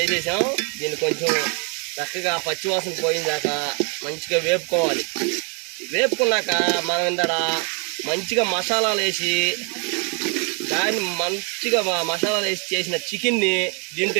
దీన్ని కొంచెం చక్కగా పచ్చివాసన పోయిందాక మంచిగా వేపుకోవాలి. వేపుకున్నాక మనం ఇందడ మంచిగా మసాలాలు వేసి దాన్ని మంచిగా మసాలాలు వేసి చేసిన చికెన్ని దీంట్లో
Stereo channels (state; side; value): quieter; left; 36.6 dB